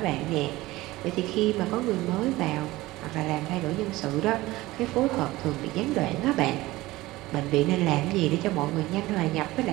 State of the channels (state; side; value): quieter; left; 18.7 dB